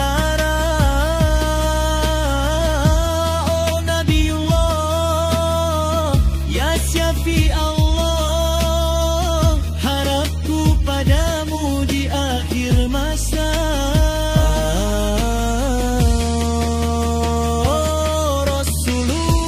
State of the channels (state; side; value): identical; both; correlation 1.00